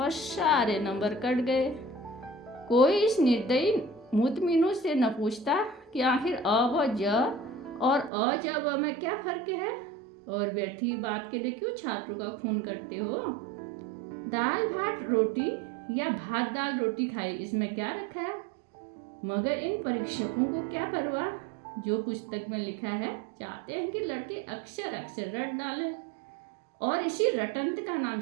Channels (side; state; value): left; drops out; at 8.1 s